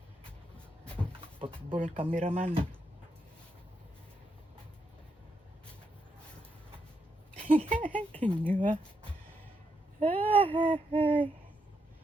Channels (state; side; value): normal; both; correlation 0.80